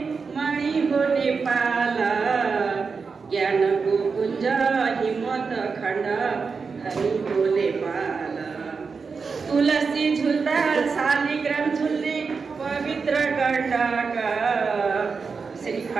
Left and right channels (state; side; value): quieter; left; 5.0 dB